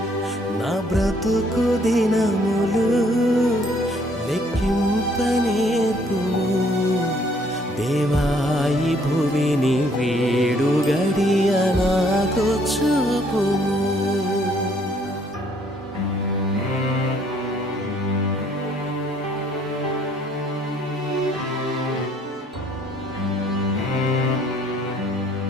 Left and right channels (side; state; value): both; normal; correlation 0.63